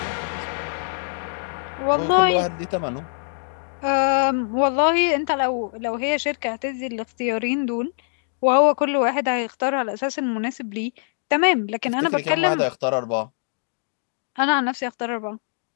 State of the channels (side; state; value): right; silent; digital silence